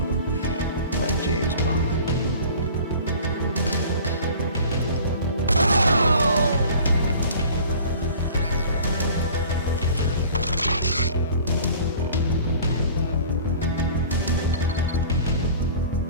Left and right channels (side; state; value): both; inverted; correlation -0.45